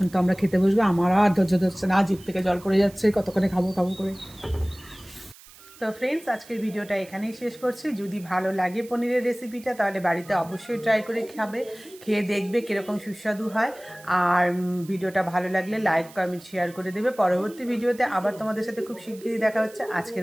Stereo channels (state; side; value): noise; right; hiss, 22 dB below the sound